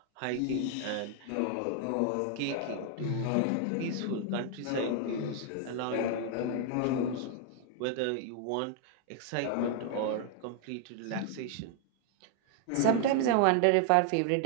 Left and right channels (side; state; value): both; different; correlation 0.00